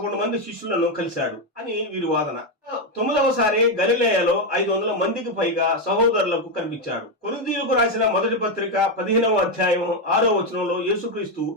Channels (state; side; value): normal; both; correlation 0.06